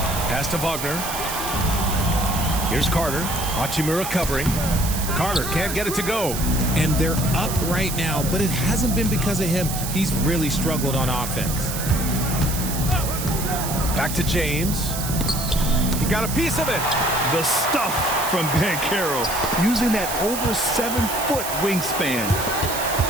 Pass to Wagner. Here's Carter. Hachimura covering. Carter can't get it to go. And they're up right now, but it hasn't been because of him. He's really struggled on offense. Back to James. He got a piece of it. The stuff from Banchero, using that over 7-foot wingspan.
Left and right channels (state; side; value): noise; right; hiss, 6 dB below the sound